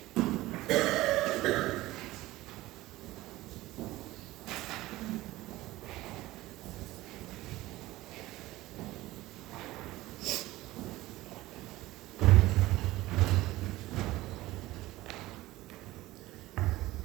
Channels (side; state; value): left; quieter; 17.7 dB